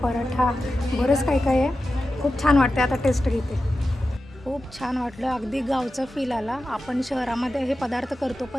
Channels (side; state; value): both; normal; correlation 0.92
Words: पराठा, बरंच काय काय आहे. खूप छान वाटते. आता टेस्ट घेते. खूप छान वाटलं. अगदी गावचा फील आला. आपण शहरामध्ये हे पदार्थ करतो